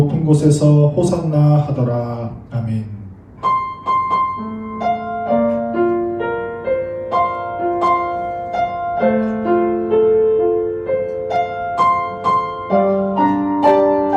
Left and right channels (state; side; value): identical; both; correlation 1.00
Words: 곳에서 호산나 하더라. 아멘.